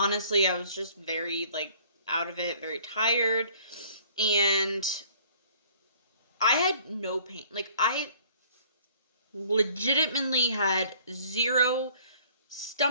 I was just very like out of it, very tired. And I had no pain. Like, I legitimately had zero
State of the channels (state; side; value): inverted; both; correlation -0.55